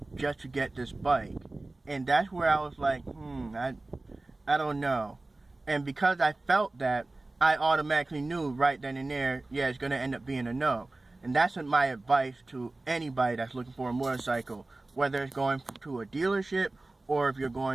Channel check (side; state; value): left; quieter; 3.0 dB